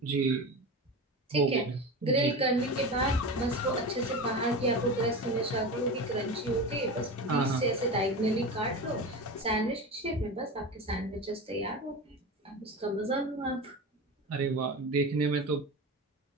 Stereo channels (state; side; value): normal; both; correlation 0.26